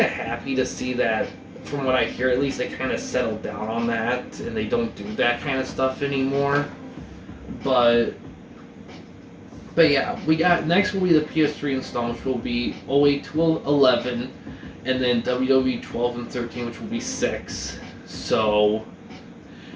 of happy to see that. From what I hear, at least they kind of settled down on that, and they don't do that kind of stuff anymore. But yeah, we got next will be the PS3 installments, will be 08 to 11, and then WWE 12 and 13, which will be 6. So,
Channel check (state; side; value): identical; both; correlation 1.00